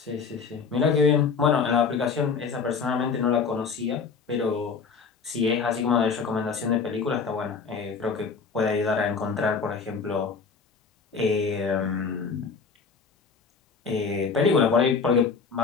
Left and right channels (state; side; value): quieter; right; 5.3 dB